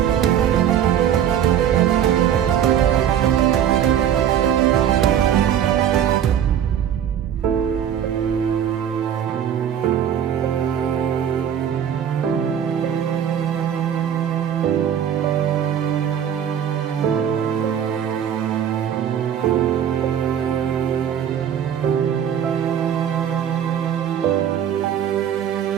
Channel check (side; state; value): left; quieter; 9.4 dB